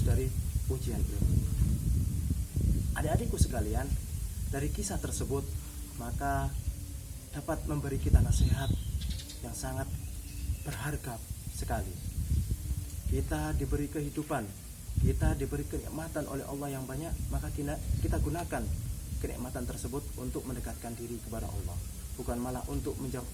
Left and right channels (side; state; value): both; identical; correlation 1.00